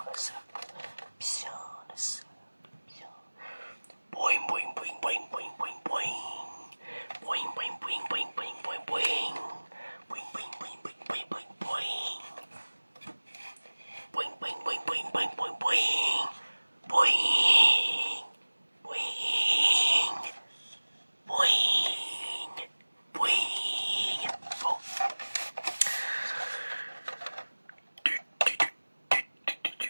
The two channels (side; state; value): both; inverted; correlation -1.00